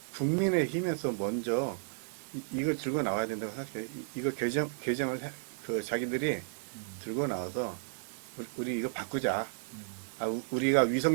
국민의힘에서 먼저 이걸 들고 나와야 된다고 생각해요. 이거 개정을 자기들이 들고 나와서 우리 이거 바꾸자. 우리가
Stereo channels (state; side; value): silent; left; digital silence